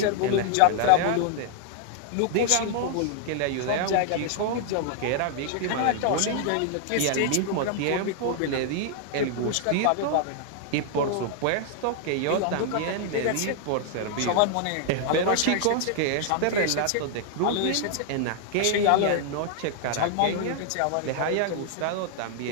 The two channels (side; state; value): both; different; correlation 0.00